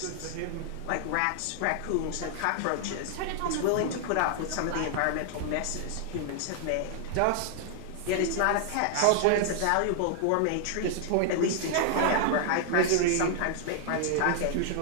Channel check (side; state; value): both; different; correlation 0.00